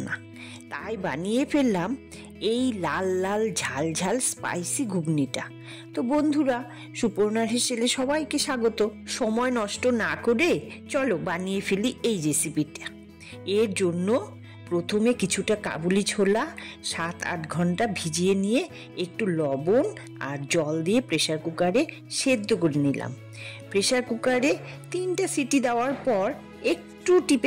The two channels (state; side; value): identical; both; correlation 1.00